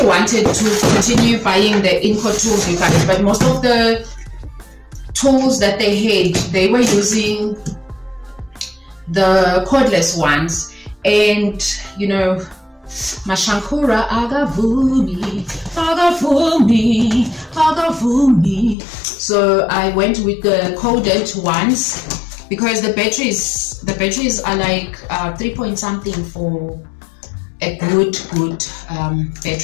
wanted to continue buying the Inco tools, you guys, but most of the tools that they had, they were using the cordless ones, and you know, Mashankura agavumi. So I went with the corded ones because the batteries are like 3 point something for a good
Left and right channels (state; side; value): drops out; right; at 18.8 s